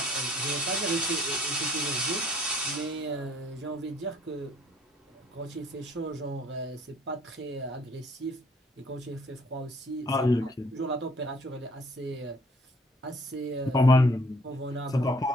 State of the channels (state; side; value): normal; both; correlation 0.59